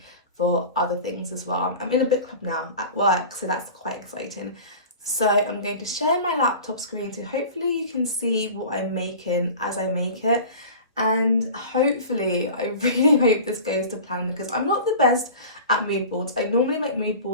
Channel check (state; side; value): inverted; both; correlation -0.37